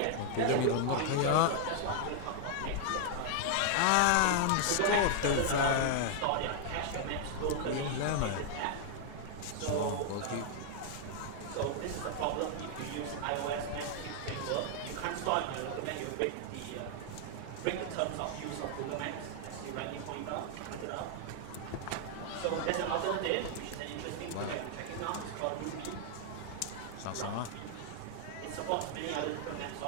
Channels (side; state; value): both; different; correlation 0.00